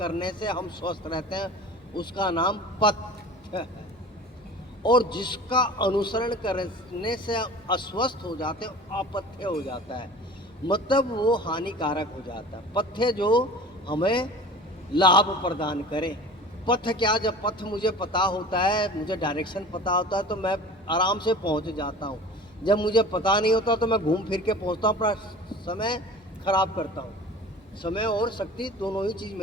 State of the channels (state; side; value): normal; both; correlation 0.40